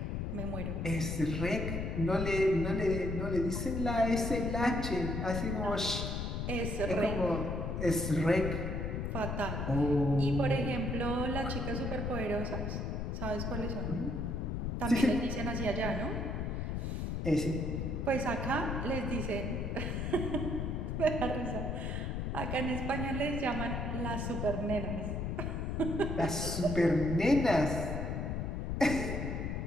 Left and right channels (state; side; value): noise; left; rumble, 2 dB below the sound